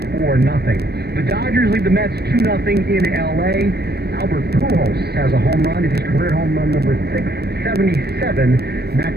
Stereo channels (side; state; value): left; late; 0.47 ms